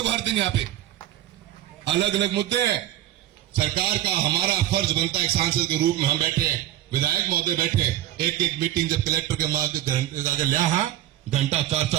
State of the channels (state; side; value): quieter; left; 13.2 dB